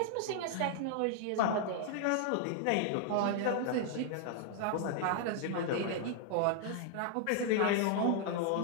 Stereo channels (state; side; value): different; both; correlation 0.00